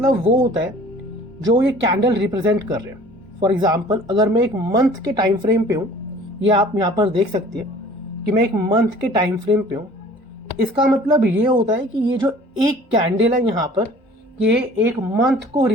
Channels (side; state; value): both; normal; correlation 0.49